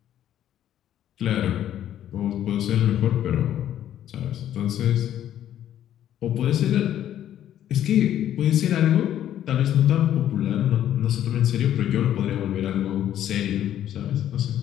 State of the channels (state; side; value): quieter; right; 11.2 dB